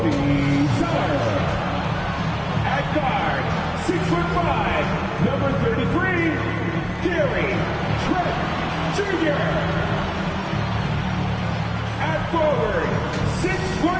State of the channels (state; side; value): identical; both; correlation 1.00